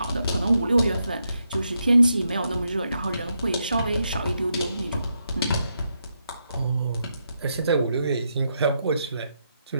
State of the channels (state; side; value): inverted; both; correlation -0.82